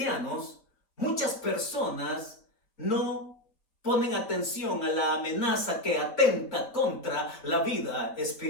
muchas personas no ponen atención a la amenaza que atenta contra la vida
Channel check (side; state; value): right; late; 4.8 ms